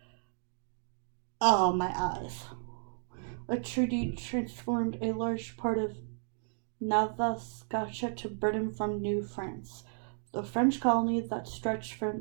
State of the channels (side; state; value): left; silent; digital silence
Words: Oh, my eyes. A treaty transformed a large part of Nova Scotia to Britain from New France, the French colony that stretched from